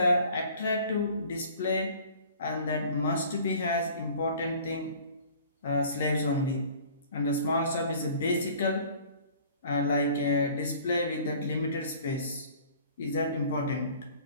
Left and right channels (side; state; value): both; inverted; correlation -0.50